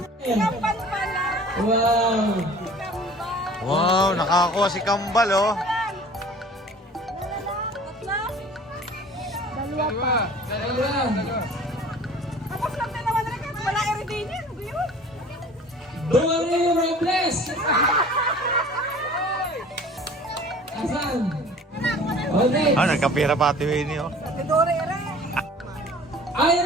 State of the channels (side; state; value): both; normal; correlation 0.46